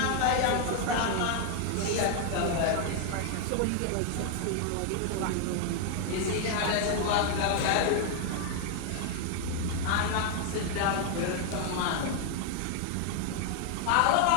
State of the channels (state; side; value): different; both; correlation 0.00